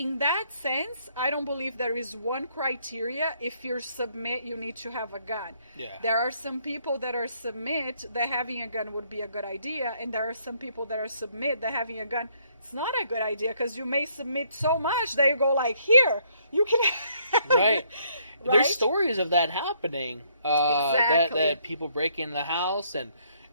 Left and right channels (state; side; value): inverted; both; correlation -0.68